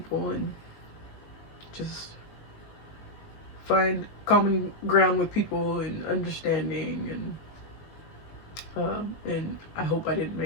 and just find common ground with people and understanding. And I hope I didn't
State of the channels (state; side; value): late; right; 19 ms